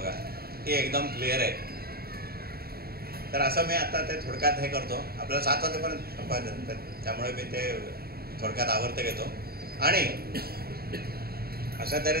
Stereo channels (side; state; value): left; late; 0.45 ms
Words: ही एकदम क्लिअर आहे. तर असं मी आता ते थोडक्यात हे करतो. आपल्याला 7 वाजेपर्यंत संपायचं, त्यामुळे मी ते थोडक्यात आवर्त घेतो. आणि अशा